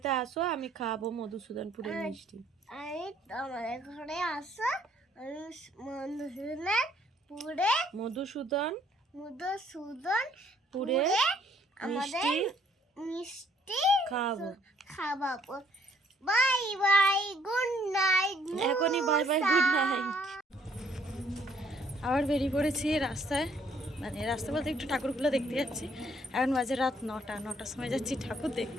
আসো, আমি খাবো মধুসূদনপুরের মিষ্টি। আমি তোমাদের ঘরে আসো, আমি মধুসূদনপুরে আমাদের মিষ্টি খাওয়াবো। Bye bye, good night. এখনই বাই বাই, গুড নাইট। আবার বেরিয়ে পড়েছি রাস্তায় মানে রাস্তা বলতে একটু ঠাকুরগুলো দেখতে যাচ্ছি। এখন বাজে রাত 9টার সময় যাচ্ছি ঠাকুর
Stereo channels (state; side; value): normal; both; correlation 0.64